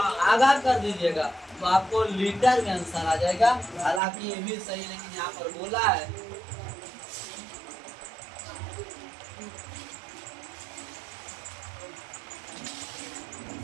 आगा कर दीजिएगा, तो आपको लीटर में आंसर आ जाएगा। हालांकि ये भी सही, लेकिन यहाँ पर बोला है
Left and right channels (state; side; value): drops out; left; at 4.0 s